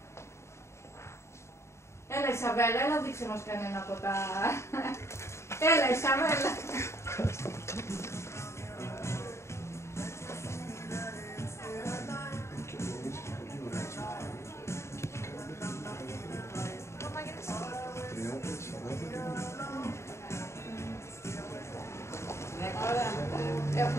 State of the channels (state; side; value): late; right; 0.13 ms